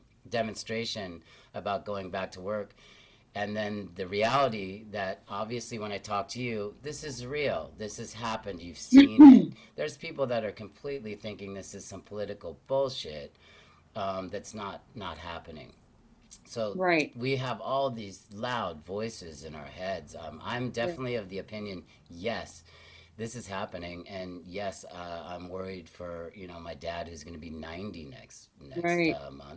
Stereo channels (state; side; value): identical; both; correlation 1.00